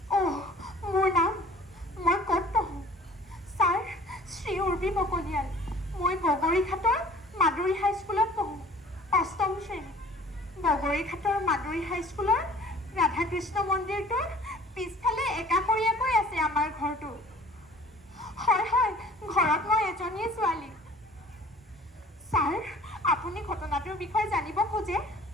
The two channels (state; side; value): normal; both; correlation 0.49